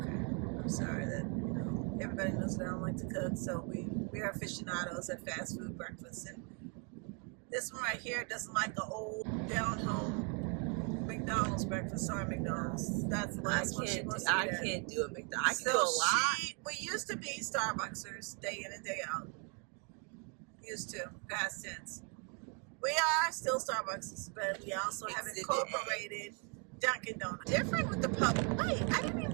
I'm sorry that, everybody knows that I don't like to cook, so we are aficionados at fast food breakfast. And this one right here doesn't like the old down-home McDonald's breakfast. Sorry, McDonald's. That's the last one she wants to I get. can't do a McDonald's. I can do a lot. We used to be Starbucksers day in and day out. Used to, past tense. We are still Starbucks, but we also have incorporated Dunkin' Donuts. Different with the public. Wait, I didn't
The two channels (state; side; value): quieter; left; 36.5 dB